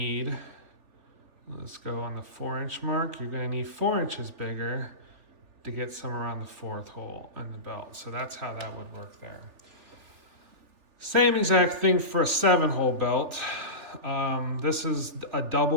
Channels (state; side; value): late; left; 3.4 ms